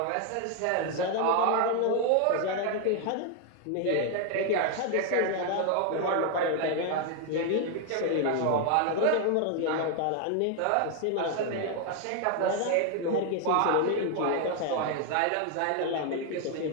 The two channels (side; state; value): both; different; correlation 0.00